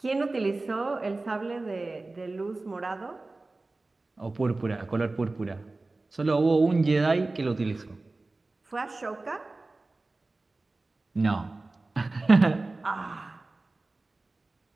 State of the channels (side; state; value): left; quieter; 3.2 dB